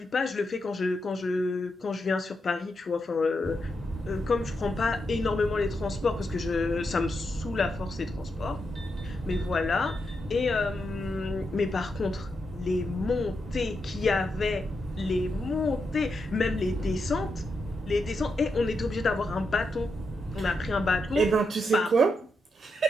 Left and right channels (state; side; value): normal; both; correlation 0.84